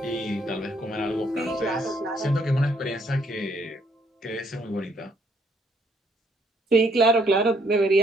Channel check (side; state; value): both; normal; correlation 0.68